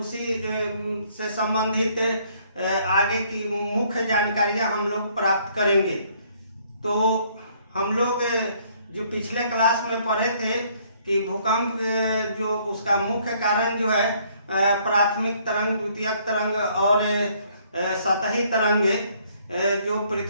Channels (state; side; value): inverted; both; correlation -0.64